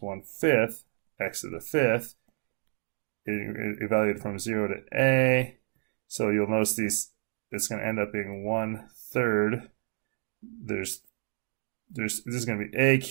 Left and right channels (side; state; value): left; silent; 58 dB below the other